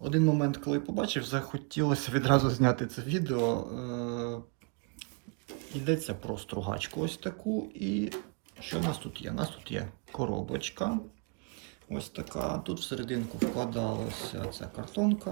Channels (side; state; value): left; quieter; 35.1 dB